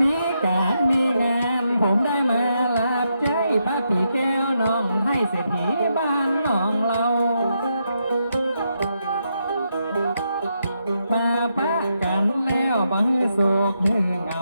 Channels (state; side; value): inverted; both; correlation -0.81